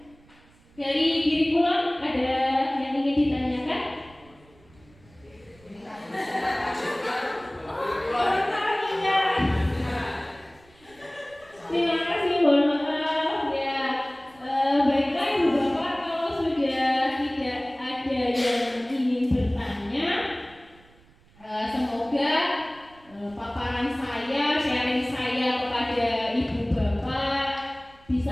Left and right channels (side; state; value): right; noise; rumble, 28 dB below the sound